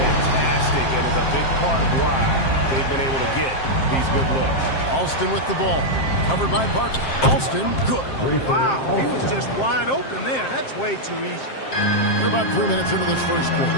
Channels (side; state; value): right; late; 7.5 ms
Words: and is a big part of why they've been able to get these good looks. Alston with the ball. Covered by Parker. Alston, good. Wow, he was just wide open there. That's way too easy. We're about 3 minutes into this first